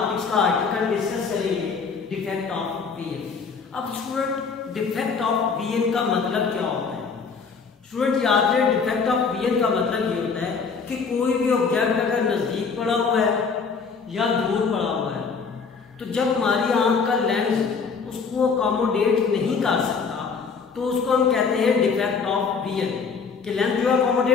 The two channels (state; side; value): quieter; right; 5.3 dB